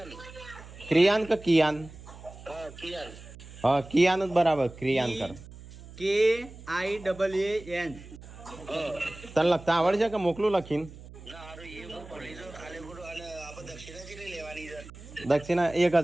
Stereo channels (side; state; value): right; noise; hum, 17 dB below the sound